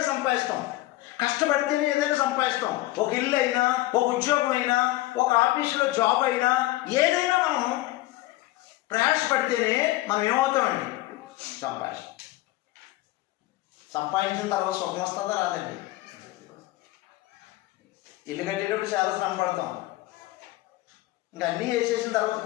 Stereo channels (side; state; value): right; quieter; 17.8 dB